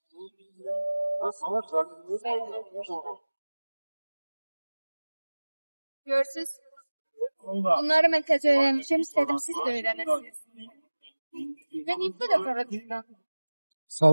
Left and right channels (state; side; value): inverted; both; correlation -1.00